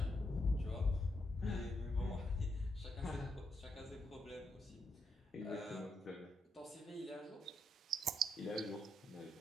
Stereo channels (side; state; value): both; normal; correlation 0.81